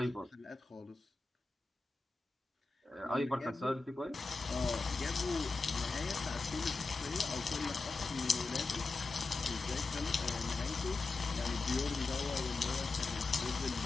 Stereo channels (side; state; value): right; quieter; 3.7 dB